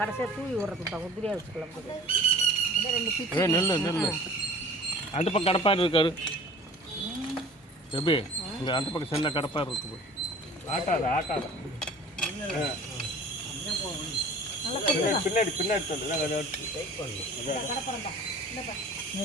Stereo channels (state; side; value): normal; both; correlation 0.45